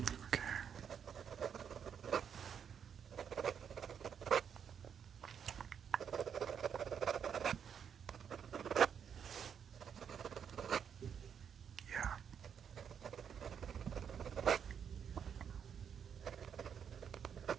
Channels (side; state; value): left; quieter; 7.8 dB